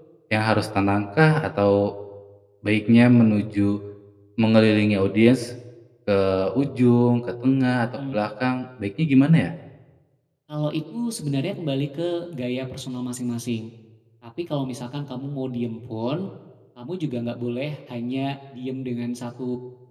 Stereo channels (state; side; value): identical; both; correlation 1.00